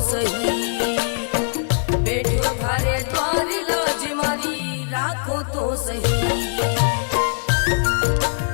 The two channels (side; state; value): right; silent; digital silence